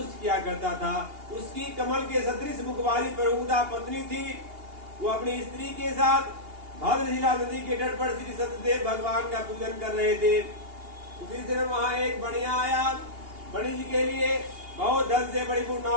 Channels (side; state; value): left; late; 2.8 ms